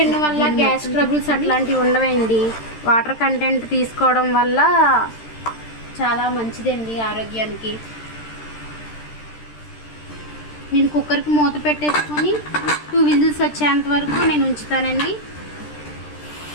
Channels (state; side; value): late; right; 13 ms